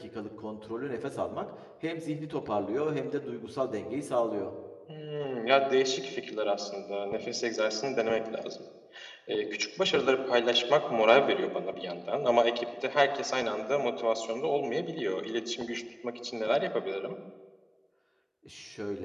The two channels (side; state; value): both; identical; correlation 1.00